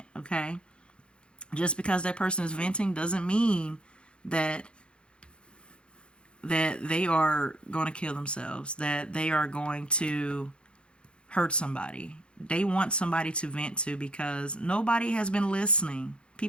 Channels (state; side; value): late; right; 0.056 ms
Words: okay? Just because that person is venting doesn't mean that they are going to kill themselves, that they are going to hurt somebody. They want somebody to vent to, because nobody has been listening.